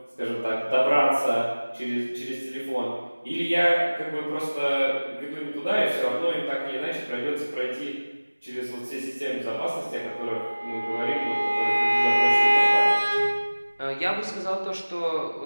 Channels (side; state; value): both; inverted; correlation -1.00